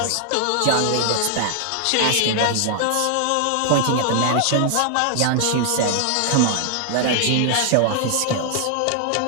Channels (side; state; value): both; different; correlation 0.00